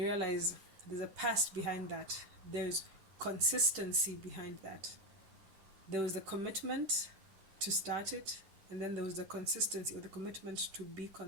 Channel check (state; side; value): late; left; 10 ms